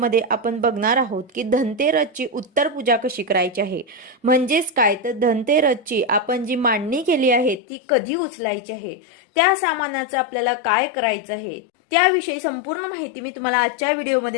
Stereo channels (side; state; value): right; drops out; at 7.6 s